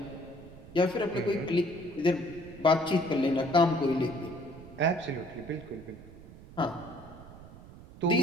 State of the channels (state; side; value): noise; right; rumble, 18 dB below the sound